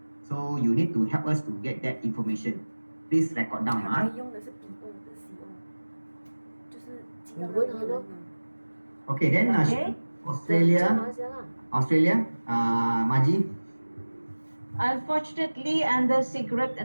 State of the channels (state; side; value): inverted; both; correlation -1.00